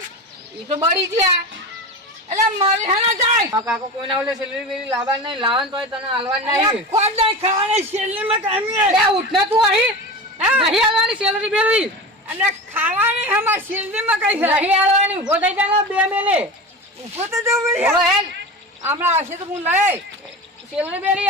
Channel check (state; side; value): normal; both; correlation 0.28